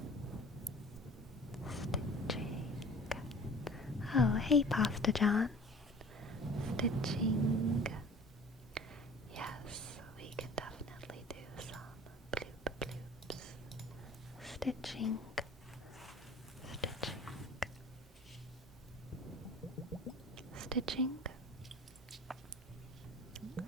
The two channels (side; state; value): both; normal; correlation 0.44